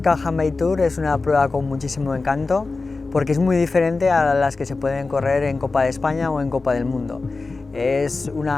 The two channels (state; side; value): quieter; right; 3.8 dB